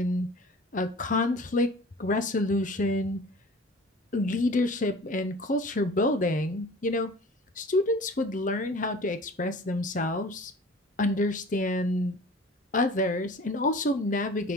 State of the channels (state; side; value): normal; both; correlation 0.43